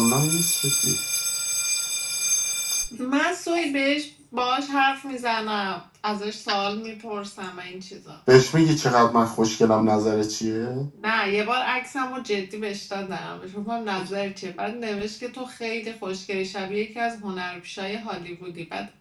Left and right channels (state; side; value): identical; both; correlation 1.00